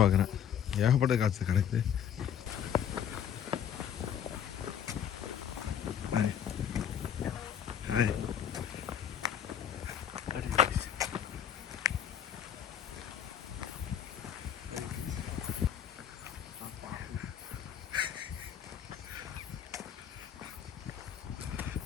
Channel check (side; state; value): right; quieter; 9.0 dB